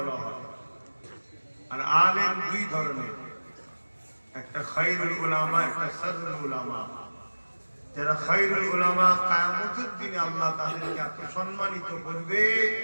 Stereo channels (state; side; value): inverted; both; correlation -1.00